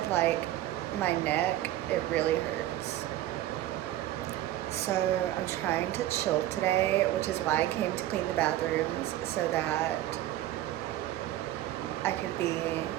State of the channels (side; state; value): left; quieter; 14.2 dB